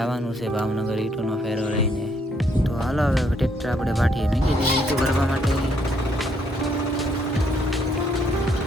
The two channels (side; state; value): both; normal; correlation 0.71